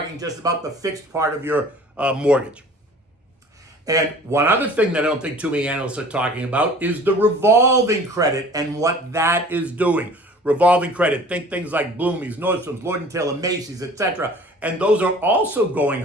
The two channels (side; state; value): both; normal; correlation 0.47